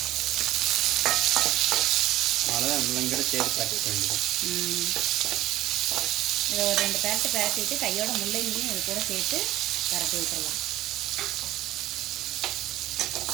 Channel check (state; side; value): quieter; left; 15.1 dB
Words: அவ்வளோதான், முள்ளங்கிற சேர்த்து காட்டிக்க வேண்டியது. இதை ஒரு 2 பரட்டிட்டு கையோட முள்ளங்கியும் இது கூட சேர்த்து பரட்டி விட்டுடலாம்.